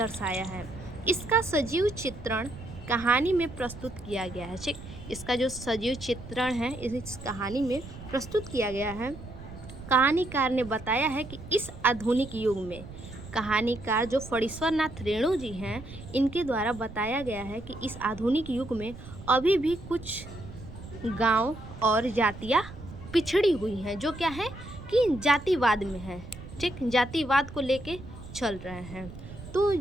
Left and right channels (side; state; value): right; noise; rumble, 14 dB below the sound